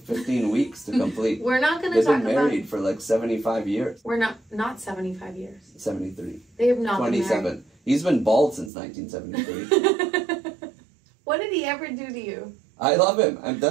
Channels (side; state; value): left; drops out; at 8.7 s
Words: 15 weeks to complete. We're not going to talk about... They've been married for 75 years. We're not 75 years. 73. They have not 27. Been married. He's been bald since 1973. What did he ever do to you? I love him. And